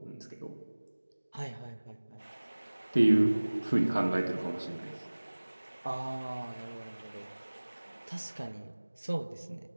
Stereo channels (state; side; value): inverted; both; correlation -1.00